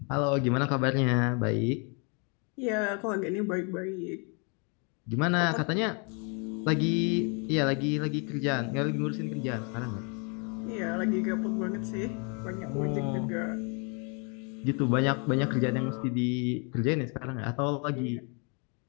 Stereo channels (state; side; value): quieter; right; 35.7 dB